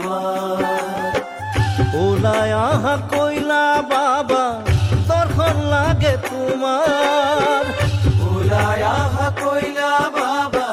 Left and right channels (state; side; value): identical; both; correlation 1.00